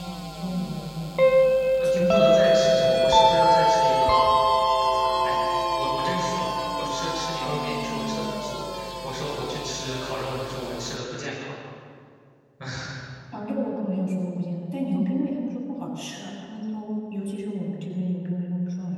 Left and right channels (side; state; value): both; identical; correlation 1.00